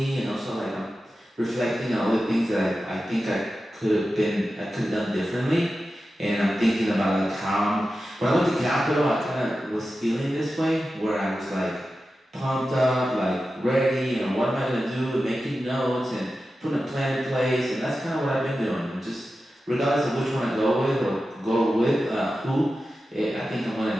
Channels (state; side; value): normal; both; correlation 0.92